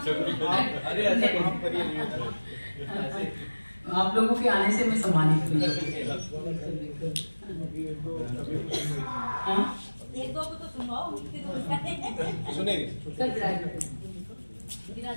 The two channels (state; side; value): inverted; both; correlation -1.00